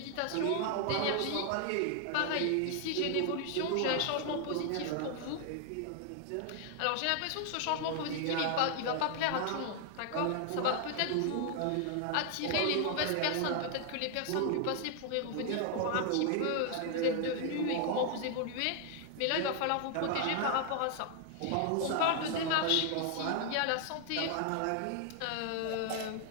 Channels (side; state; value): both; different; correlation 0.00